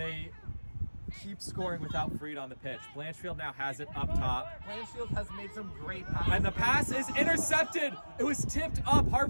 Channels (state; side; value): inverted; both; correlation -1.00